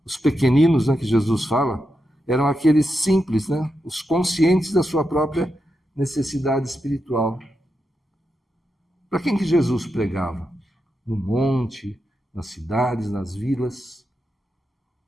Os pequeninos, né, que Jesus fala, eram aqueles simples, né, os conscientes da sua própria necessidade espiritual. Para quem que Jesus pregava? No monte, nas cidades, nas vilas,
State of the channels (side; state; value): both; normal; correlation 0.87